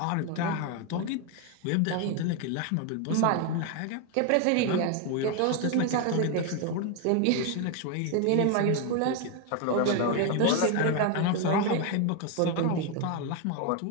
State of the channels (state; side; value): different; both; correlation 0.01